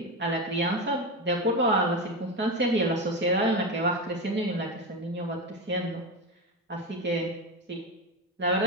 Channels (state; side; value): normal; both; correlation 0.17